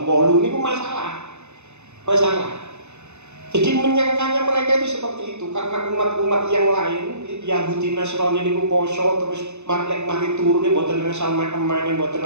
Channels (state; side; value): late; left; 0.82 ms